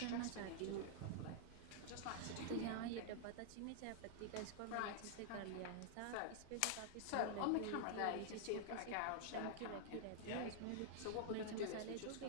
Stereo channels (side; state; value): both; different; correlation -0.01